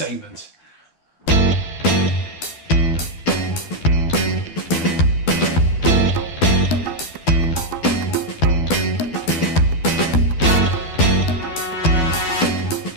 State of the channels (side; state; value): right; late; 12 ms